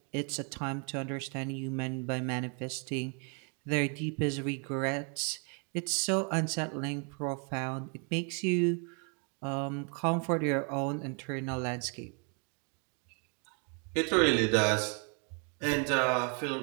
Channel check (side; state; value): left; quieter; 37.4 dB